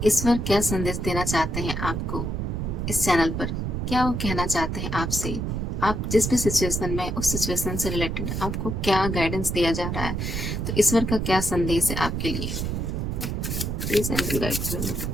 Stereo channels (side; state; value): right; noise; rumble, 2 dB below the sound